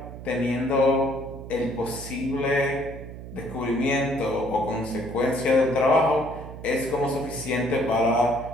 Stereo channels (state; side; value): noise; right; hum, 12 dB below the sound